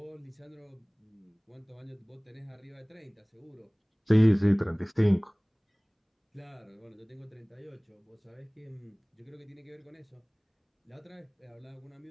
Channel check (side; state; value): both; identical; correlation 1.00